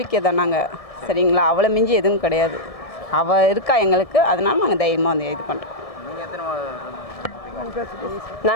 தான் நாங்கள். சரிங்களா? அவளை மிஞ்சி எதுவும் கிடையாது. அவள் இருக்கா எங்களுக்கு, அதனால நாங்கள் தைரியமாக வந்து இது பண்ணுறோம். நீங்கள் எத்தனை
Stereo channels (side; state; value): right; late; 1.7 ms